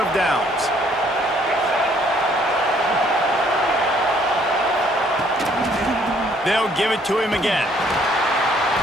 of downs. They'll give it to him again.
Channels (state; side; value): normal; both; correlation 0.64